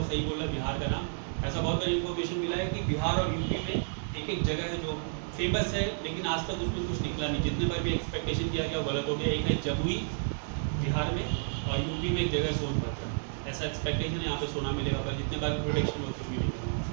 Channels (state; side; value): silent; left; 57 dB below the other